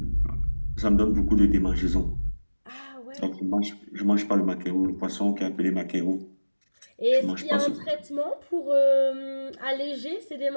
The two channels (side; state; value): both; inverted; correlation -1.00